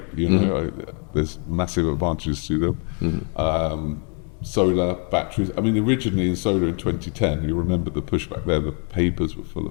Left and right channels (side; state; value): right; quieter; 38.2 dB